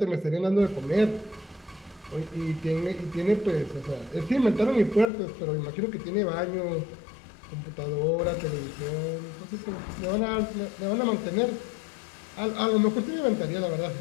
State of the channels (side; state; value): right; drops out; at 5.1 s